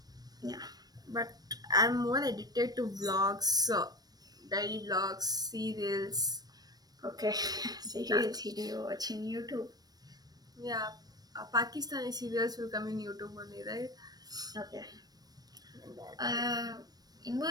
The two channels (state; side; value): late; left; 0.19 ms